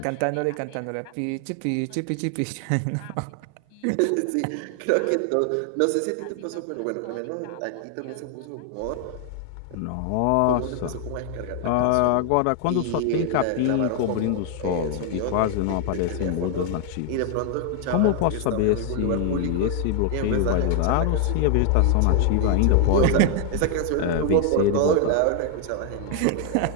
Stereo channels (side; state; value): both; different; correlation 0.00